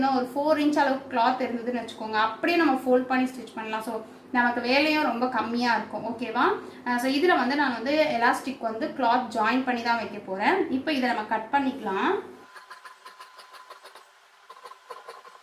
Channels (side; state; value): both; identical; correlation 1.00